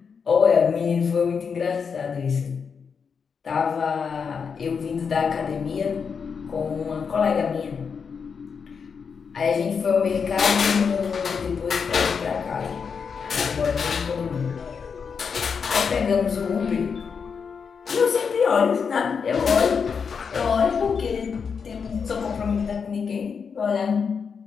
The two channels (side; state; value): right; quieter; 6.1 dB